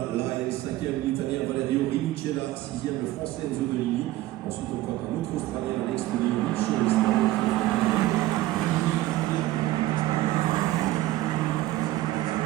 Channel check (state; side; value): quieter; left; 16.1 dB